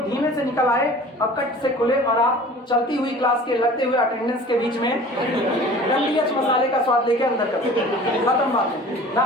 धीमे से निकल आए और कट से खुले, और आप चलती हुई क्लास के लगते हुए अटेंडेंस के बीच में डंडीएच मसाले का स्वाद लेके अंदर करते, खत्म बात ना।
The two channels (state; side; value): normal; both; correlation 0.44